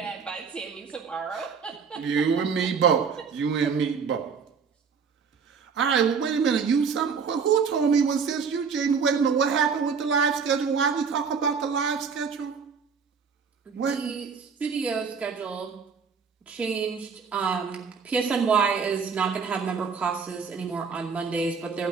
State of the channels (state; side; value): quieter; left; 5.9 dB